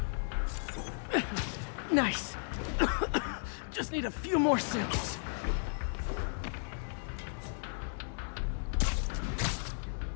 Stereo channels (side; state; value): right; silent; 55 dB below the other